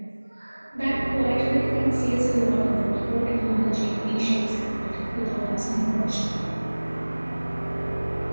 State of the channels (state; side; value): inverted; both; correlation -1.00